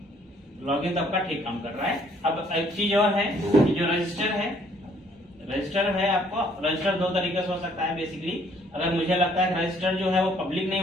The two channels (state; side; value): normal; both; correlation 0.63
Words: लॉगिन तो आपका ठीक काम कर रहा है। अब एक चीज और है कि जो रजिस्टर है आपको, रजिस्टर दो तरीके से हो सकता है बेसिकली। अगर मुझे लगता है रजिस्टर जो है वो पब्लिक नहीं